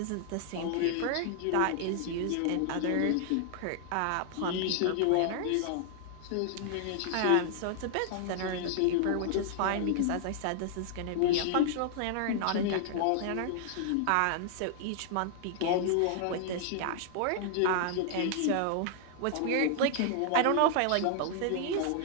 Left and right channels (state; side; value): different; both; correlation -0.01